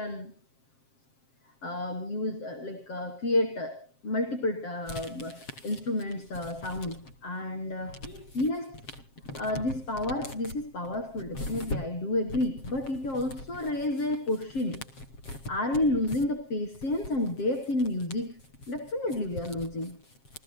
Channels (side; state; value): right; late; 7.5 ms